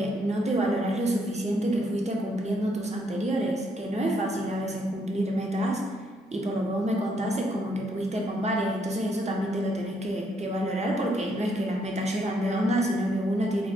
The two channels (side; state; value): both; normal; correlation 0.72